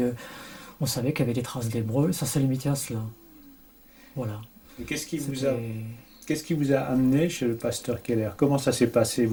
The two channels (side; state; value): both; identical; correlation 1.00